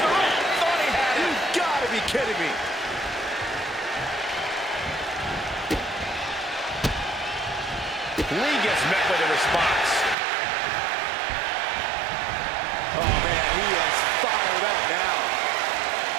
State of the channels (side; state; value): left; drops out; at 10.2 s